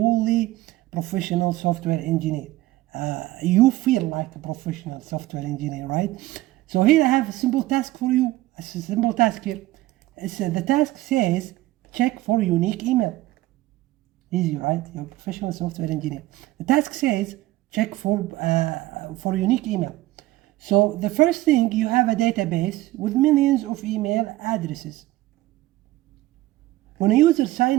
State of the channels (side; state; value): left; quieter; 17.1 dB